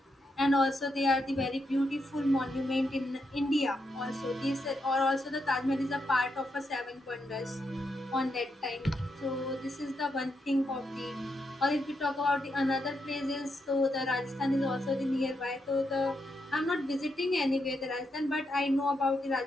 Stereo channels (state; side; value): normal; both; correlation 0.82